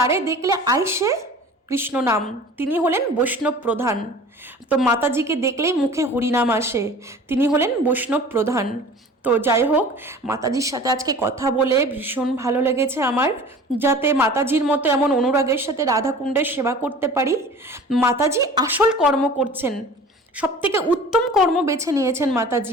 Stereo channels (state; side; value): normal; both; correlation 0.42